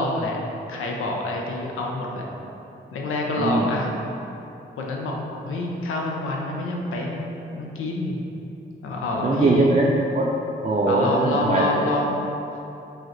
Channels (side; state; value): both; normal; correlation 0.45